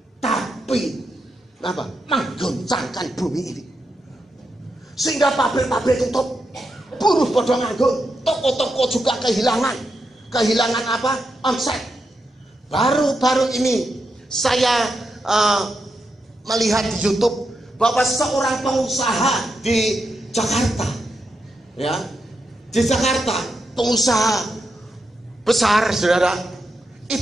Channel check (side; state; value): both; normal; correlation 0.85